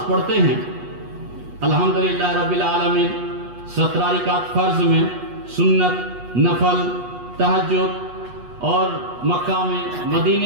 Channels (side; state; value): left; late; 8.3 ms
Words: پڑھتے ہیں الحمدللہ رب العالمین، 17 رکعت فرض میں، سنت، نفل، تہجد اور مکہ میں،